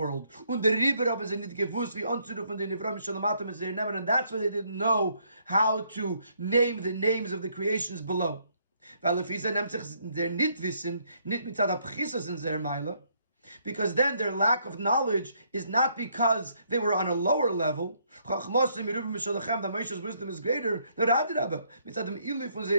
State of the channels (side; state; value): both; inverted; correlation -0.70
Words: Und der Rieber haben sie nicht gewusst, wie anzurufen den Nivram Shalamatim es nehmen, and that's why they didn't know how to name the names of the creations below. Weil if sie nimmt sich der nicht wissen, nicht mit der Pchisas in der Meile, because then their lack of knowledge is not because they were on a lower level. That Moshe's wisdom is greater.